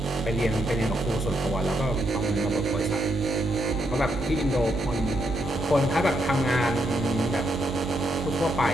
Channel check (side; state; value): both; normal; correlation 0.79